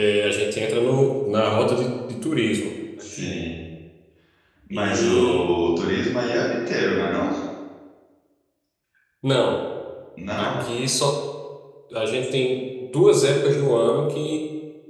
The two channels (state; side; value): identical; both; correlation 1.00